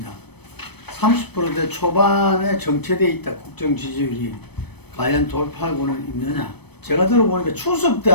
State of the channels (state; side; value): late; right; 0.97 ms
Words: 30%대 초반에 정체되어 있다 국정 지지율이 과연 돌파하고는 있느냐. 제가 들어보니까 추석 때